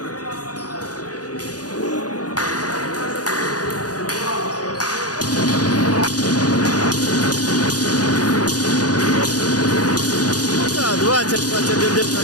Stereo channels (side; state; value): right; late; 0.68 ms